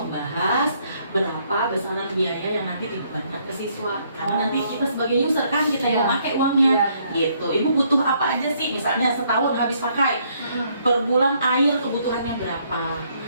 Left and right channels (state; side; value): inverted; both; correlation -0.69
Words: berapa besaran biaya yang nanti dibebankan ke siswa. Karena nanti kita sebagai user kan kita yang pakai uangnya. Gitu. Ibu butuh apa aja sih? Misalnya setahun habis pakai, per bulan air kebutuhannya berapa?